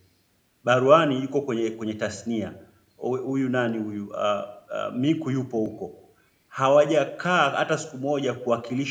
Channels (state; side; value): identical; both; correlation 1.00